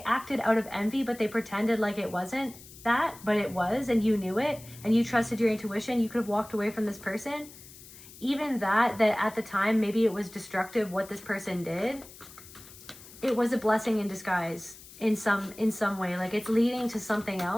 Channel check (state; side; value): noise; left; hiss, 19 dB below the sound